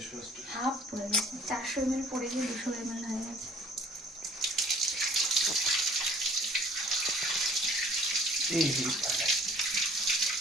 ওয়াশ। হাফ পড়ে গেছে, 400 ml পড়ে গিয়ে 200 ml হয়ে গেছে। এই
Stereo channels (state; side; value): normal; both; correlation 0.53